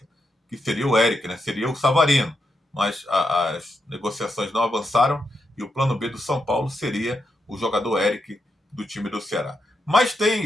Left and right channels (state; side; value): normal; both; correlation 0.83